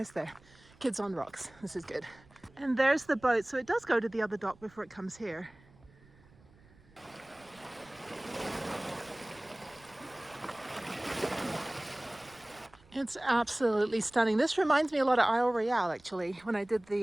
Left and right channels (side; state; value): right; noise; rumble, 27 dB below the sound